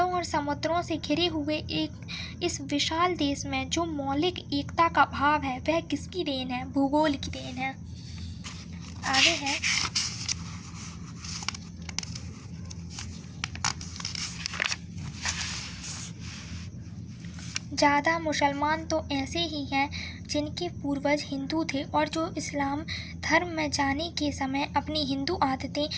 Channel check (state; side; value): identical; both; correlation 1.00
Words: और समुद्रों से घिरे हुए इस विशाल देश में जो मौलिक एकता का भाव है वह किसकी देन है? भूगोल की देन है। आगे है ज़्यादा मुसलमान तो ऐसे ही हैं जिनके पूर्वज हिंदू थे और जो इस्लाम धर्म में जाने के समय अपनी हिंदू आदतें